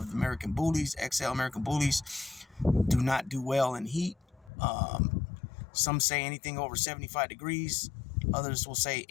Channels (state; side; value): drops out; right; at 4.5 s